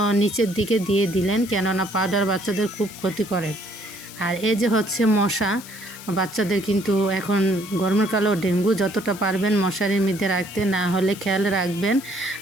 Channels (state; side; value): noise; left; hiss, 16 dB below the sound